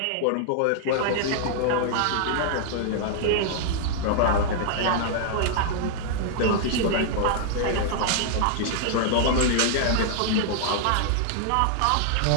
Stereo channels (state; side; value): different; both; correlation -0.01